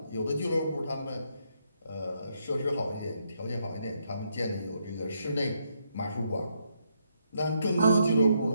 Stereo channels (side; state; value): both; inverted; correlation -0.76